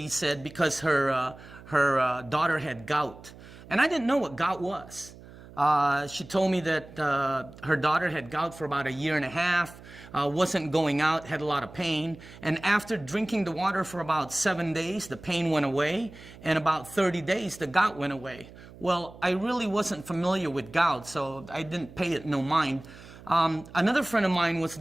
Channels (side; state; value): right; noise; hum, 19 dB below the sound